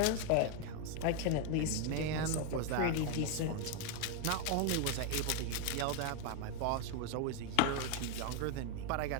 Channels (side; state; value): both; different; correlation 0.01